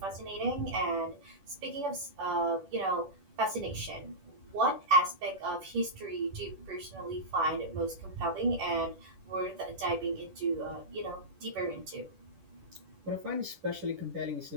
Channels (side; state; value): left; late; 10 ms